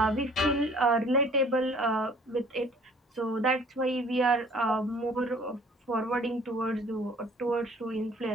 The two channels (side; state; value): both; normal; correlation 0.54